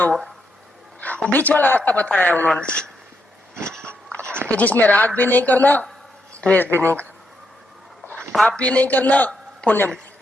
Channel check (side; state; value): both; normal; correlation 0.80